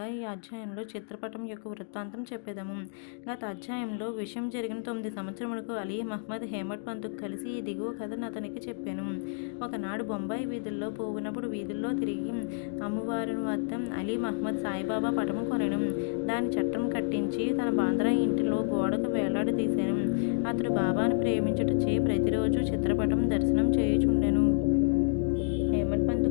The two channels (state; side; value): silent; right; digital silence